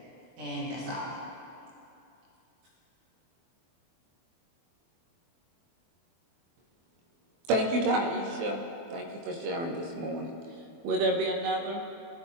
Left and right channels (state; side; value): late; left; 24 ms